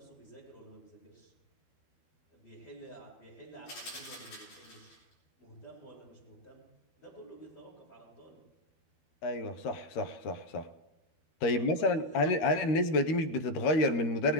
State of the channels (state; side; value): late; right; 12 ms